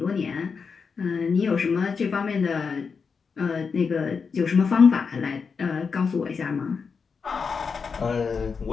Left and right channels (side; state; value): right; quieter; 5.5 dB